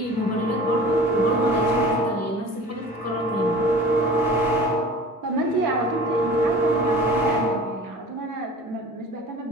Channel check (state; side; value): normal; both; correlation 0.41